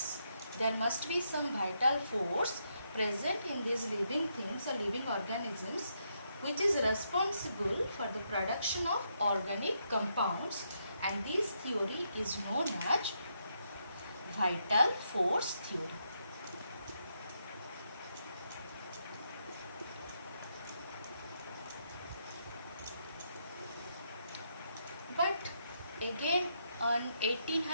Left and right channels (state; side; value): inverted; both; correlation -0.79